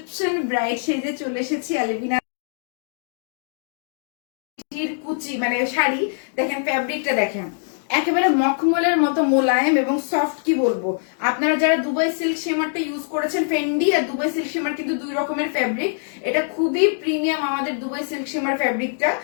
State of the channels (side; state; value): right; silent; digital silence